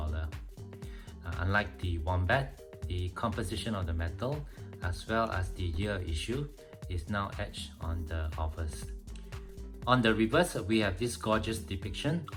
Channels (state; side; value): identical; both; correlation 1.00